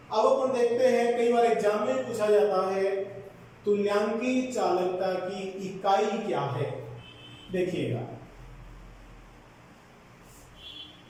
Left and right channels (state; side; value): identical; both; correlation 1.00